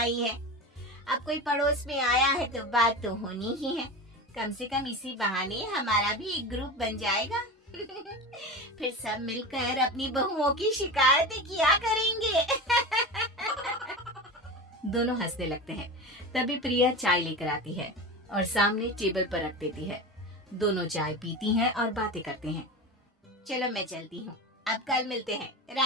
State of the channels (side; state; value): both; normal; correlation 0.26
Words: है। अब कोई पड़ोस में आया है तो बात तो होनी ही है, कम से कम इसी बहाने हमारा भी एक ग्रुप बन जाएगा। फिर सब मिलकर अपनी बहुओं की शिकायतें किया करेंगे। दोनों हंसने लगते हैं। तभी प्रिया चाय लेकर आती है और सामने टेबल पर रख देती है। दोनों चाय पीती हैं और बातें करते हैं। चलो मैं चलती हूँ, अब कल मिलते हैं।